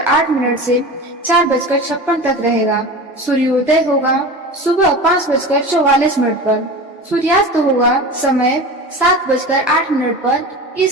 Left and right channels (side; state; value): both; normal; correlation 0.31